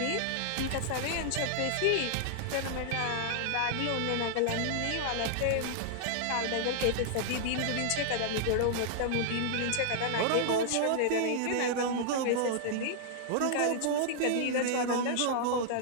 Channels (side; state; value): both; different; correlation -0.01